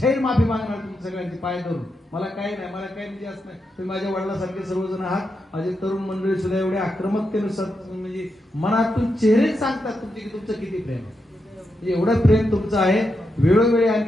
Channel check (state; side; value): normal; both; correlation 0.85